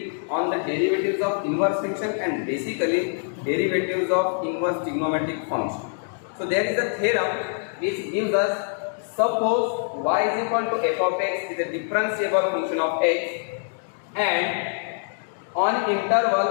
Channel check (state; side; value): silent; right; digital silence